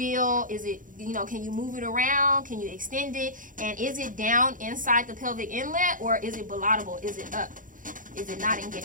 is it, can you move it around? Can you extend it? And is it down inside the pelvic inlet, or is it bilateral? Is it up? Is it not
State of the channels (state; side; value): late; left; 0.39 ms